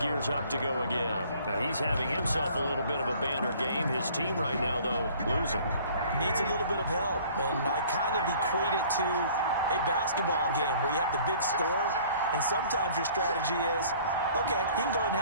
up to go again. Now, he's having himself a little bit of a banner game. His team right now, though, losing. Needs a little bit of help, and I kind of equate it to a basketball game where you have the big score, and sometimes your strategy is, okay, he can go ahead and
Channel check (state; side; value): inverted; both; correlation -0.53